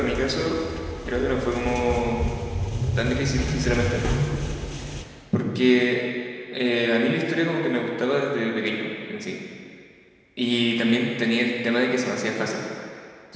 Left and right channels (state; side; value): identical; both; correlation 1.00